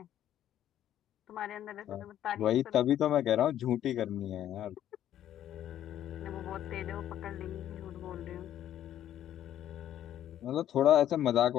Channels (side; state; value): right; quieter; 11.4 dB